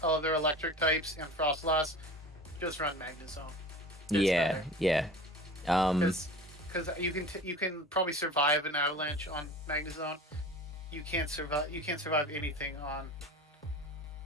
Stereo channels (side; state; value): both; normal; correlation 0.36